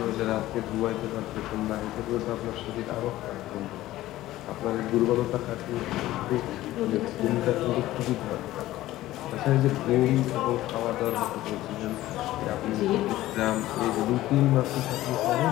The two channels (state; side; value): quieter; right; 15.6 dB